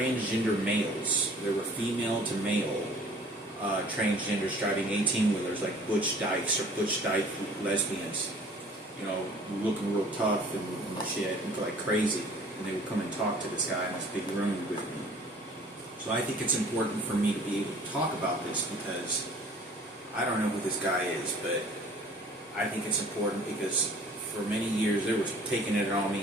males. They were female to male transgenders driving 18-wheelers like Butch Dykes or Butch Dyke lesbians. You know, looking real tough and shit, and like crazy. And they would come and talk to this guy in this big room with me. So I think it's important for me to be able to talk about this because I don't know who this guy is, but I think it's important because for many years they were taking it on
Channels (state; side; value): normal; both; correlation 0.51